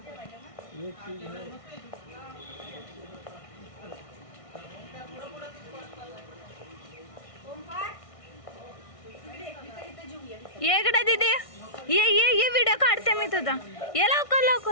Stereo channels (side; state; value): right; late; 1.6 ms